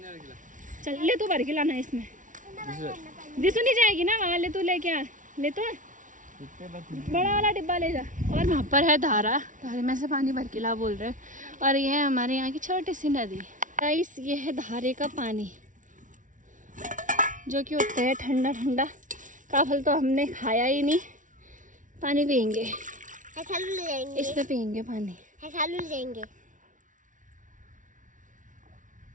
चल, ले तू भर के लाना इसमें, दिसू नहीं जाएगी ना वहाँ, ले तू लेके आ, ले तो बड़ा वाला डिब्बा ले जा। और वहाँ पर है धारा, धारे में से पानी भर के ला बोल रहे हैं। और ये है हमारे यहाँ की छोटी सी नदी। गाइस ये है धारे का पानी, जो कि होता है ठंडा ठंडा। काफल तो हमने खाया ही नहीं, पानी पियेंगे, इसमें पियेंगे पानी। जाएंगे।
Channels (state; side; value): late; left; 0.37 ms